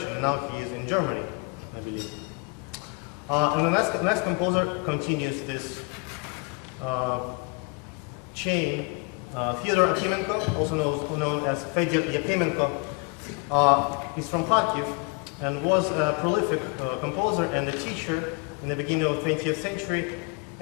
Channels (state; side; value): quieter; right; 30.7 dB